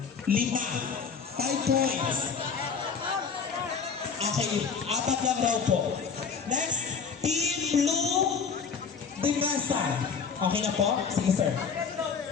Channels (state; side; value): quieter; right; 6.0 dB